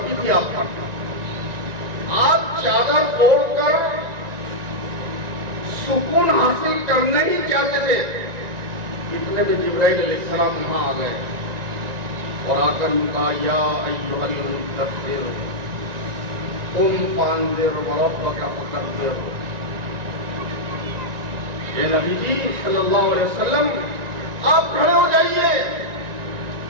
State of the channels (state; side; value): late; left; 1.9 ms